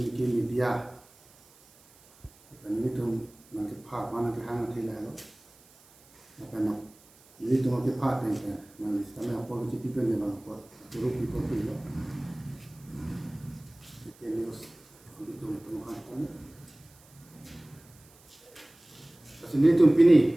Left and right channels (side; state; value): right; noise; hiss, 27 dB below the sound